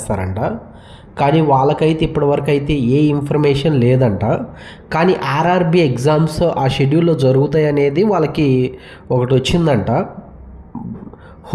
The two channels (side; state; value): both; identical; correlation 1.00